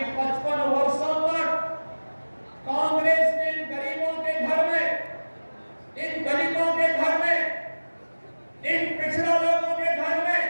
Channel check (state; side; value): inverted; both; correlation -1.00